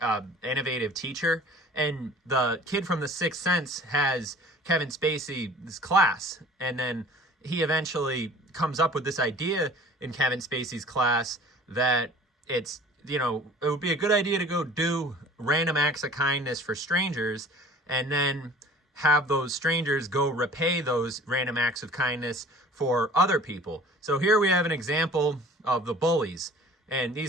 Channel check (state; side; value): normal; both; correlation 0.47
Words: innovative teacher. And the kid from The Sixth Sense has Kevin Spacey's class, and then he eventually comes up with this idea in Kevin Spacey's class that it would be a good idea to go do random acts of kindness for strangers, and then have those strangers go repay those random acts of kindness for other people. So here we have an example of the bullies. And